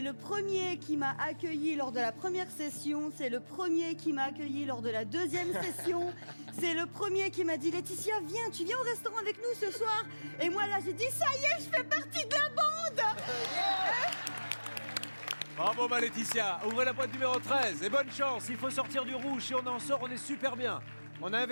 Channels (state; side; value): inverted; both; correlation -1.00